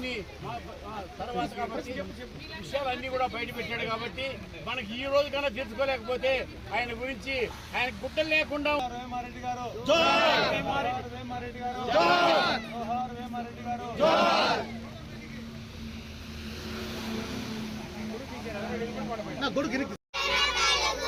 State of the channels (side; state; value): both; identical; correlation 1.00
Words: తర్వాత కాబట్టి విషయాలన్నీ కూడా బయట పెట్టాడు. కాబట్టి మనకి ఈ రోజు కన్నా తెలుసుకోలేకపోతే ఆయన గురించి ఆయన గుడ్డలు లేకుండా వేమారెడ్డి గారు